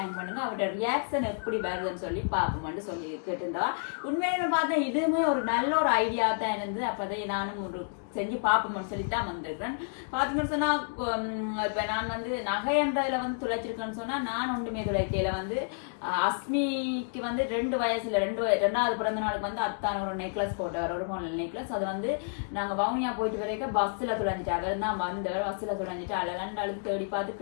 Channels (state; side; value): silent; right; digital silence